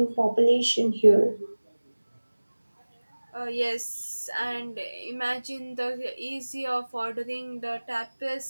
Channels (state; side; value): inverted; both; correlation -1.00